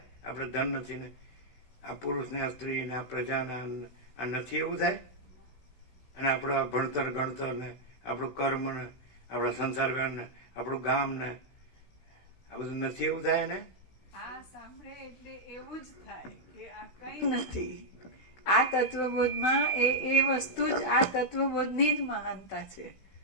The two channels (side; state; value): right; late; 16 ms